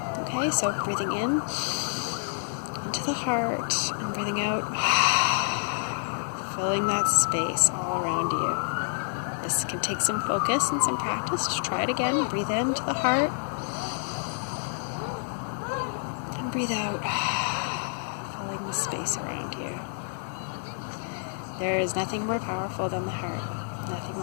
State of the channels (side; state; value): right; silent; digital silence